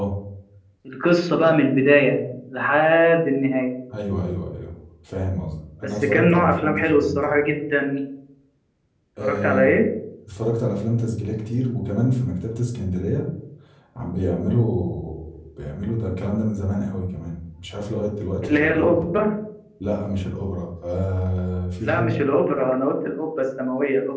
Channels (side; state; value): both; identical; correlation 1.00